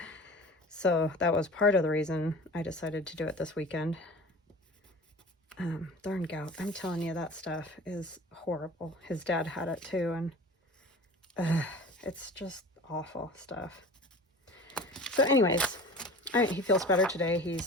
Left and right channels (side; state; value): both; normal; correlation 0.39